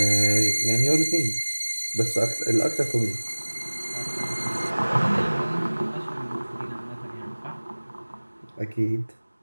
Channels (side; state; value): both; inverted; correlation -1.00